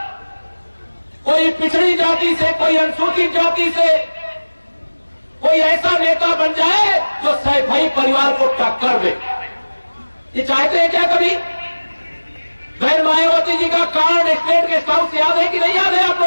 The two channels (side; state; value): both; inverted; correlation -1.00